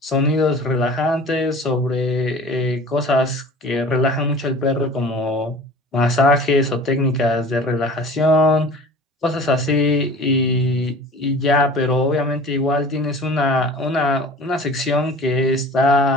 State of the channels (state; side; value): normal; both; correlation 0.42